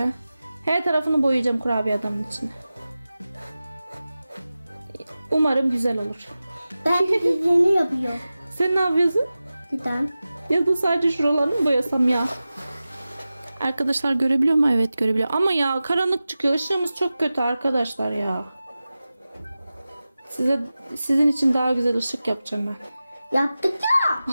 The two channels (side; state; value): both; inverted; correlation -0.95